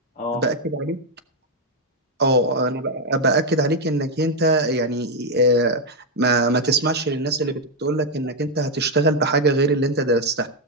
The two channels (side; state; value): both; normal; correlation 0.03